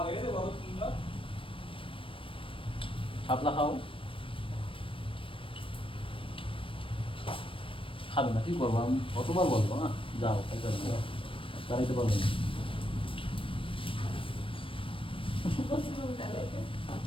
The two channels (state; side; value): late; right; 0.25 ms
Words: বড় সুন্দর। শাপলা খাও। খাবে না, কি করবো আমি, কতবার বলবো না যাও খাইতে হবে, চালাইতে পারবো না।